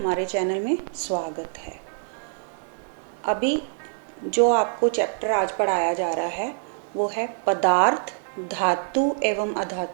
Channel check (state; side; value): silent; left; digital silence